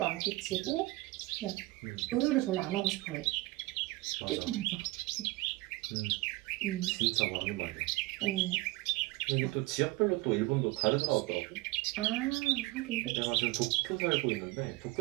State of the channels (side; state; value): left; quieter; 20.9 dB